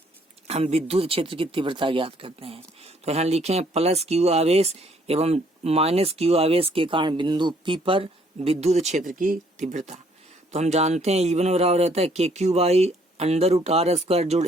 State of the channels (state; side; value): normal; both; correlation 0.65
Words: हम विद्युत क्षेत्र की तीव्रता ज्ञात करते हैं। तो यहाँ लिखे हैं प्लस क्यू आवेश एवं माइनस क्यू आवेश के कारण बिंदु P पर विद्युत क्षेत्र की तीव्रता। तो हम जानते हैं E1 बराबर रहता है K Q by under root R square जोड़